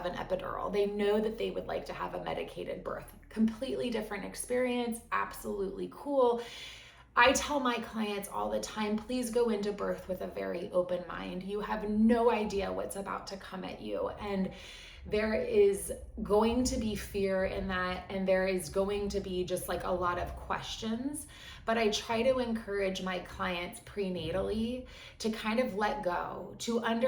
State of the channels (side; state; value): both; identical; correlation 1.00